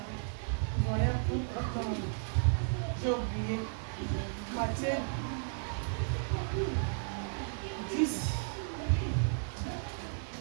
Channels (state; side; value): silent; left; digital silence